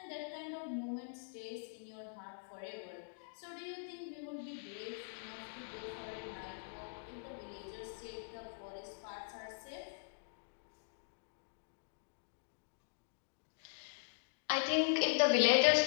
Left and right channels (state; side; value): silent; right; digital silence